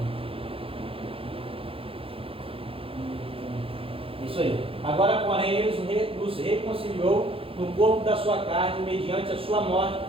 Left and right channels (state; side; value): late; left; 0.27 ms